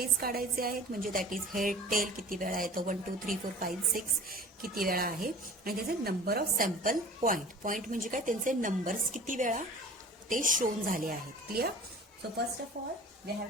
काढायचे आहेत, म्हणजे दॅट इज हेड, टेल किती वेळा येतो, 1 2 3 4 5 6 किती वेळा आहे, आणि त्याचे नंबर ऑफ सॅम्पल पॉइंट म्हणजे काय? त्यांचे नंबर्स किती वेळा ते शोन झाले आहेत. Clear. So first of all we have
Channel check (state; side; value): normal; both; correlation 0.42